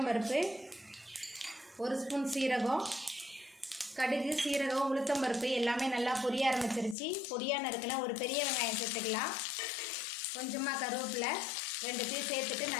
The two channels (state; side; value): drops out; right; at 7.0 s